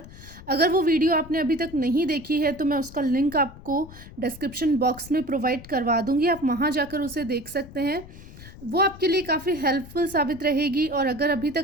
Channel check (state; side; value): noise; left; rumble, 17 dB below the sound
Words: अगर वो वीडियो आपने अभी तक नहीं देखी है तो मैं उसका लिंक आपको डिस्क्रिप्शन बॉक्स में प्रोवाइड करवा दूँगी, आप वहाँ जाकर उसे देख सकते हैं। वो आपके लिए काफ़ी हेल्पफुल साबित रहेगी। और अगर अभी